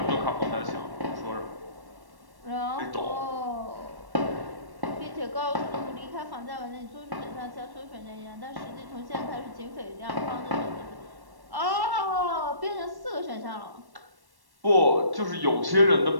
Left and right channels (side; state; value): left; late; 1.1 ms